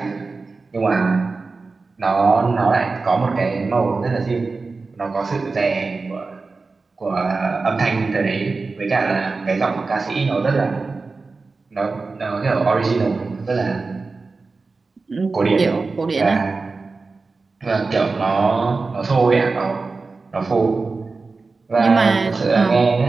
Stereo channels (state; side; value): quieter; left; 4.0 dB